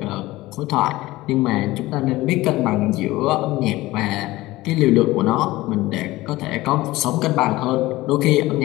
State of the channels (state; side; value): quieter; right; 18.5 dB